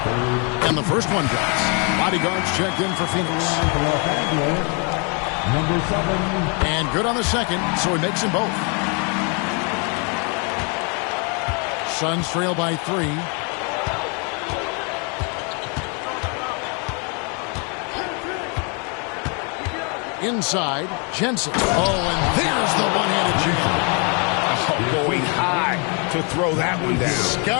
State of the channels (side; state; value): right; quieter; 35.5 dB